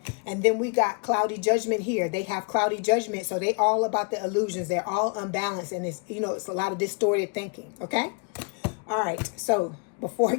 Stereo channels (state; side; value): quieter; right; 36.6 dB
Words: And then we got cloudy judgment here. They have cloudy judgment, so they all about the illusions. They're all unbalanced, and it's, you know, it's a lot of distorted thinking, okay? All right, so before